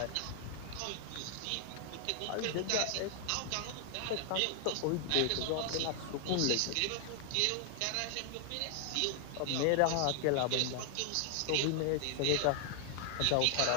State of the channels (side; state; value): both; different; correlation 0.00